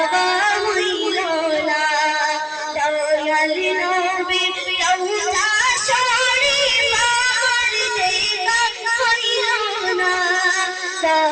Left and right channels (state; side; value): identical; both; correlation 1.00